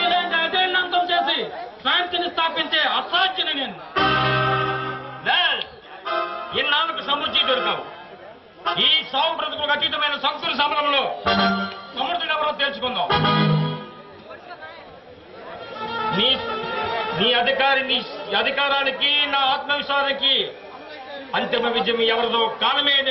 అజేయుడిని అంతం చేసి శాంతిని స్థాపించే అసాధ్యుని నేను. ఇన్నాళ్ళకు సముచి దొరికావు. ఈ సాగు బ్రతుకులకు అతీతమైన సంకుల సమరంలో సమర్థుడు ఎవరో తెలుసుకుందాం. నీ అధికారానికి నా ఆత్మవిశ్వాసానికి అంతిమ విజయం ఎవరిదో కాలమే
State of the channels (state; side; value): identical; both; correlation 1.00